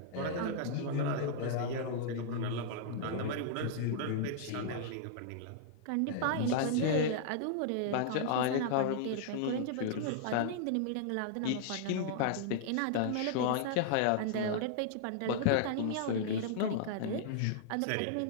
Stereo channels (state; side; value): different; both; correlation -0.01